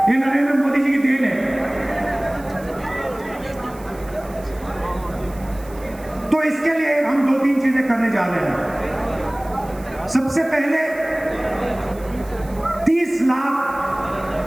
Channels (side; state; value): right; noise; hiss, 22 dB below the sound